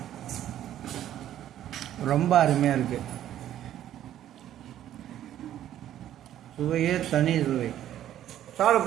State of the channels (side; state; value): left; quieter; 11.8 dB